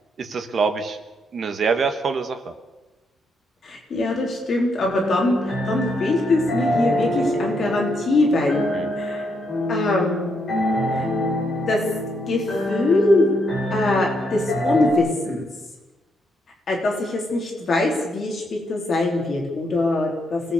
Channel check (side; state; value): both; normal; correlation 0.77